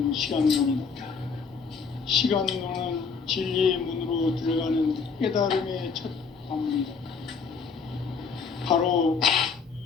시간론이다. 시간론은 진리의 문으로 들어가는 깨달음의 첫 관문이다. 바로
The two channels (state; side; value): quieter; right; 5.4 dB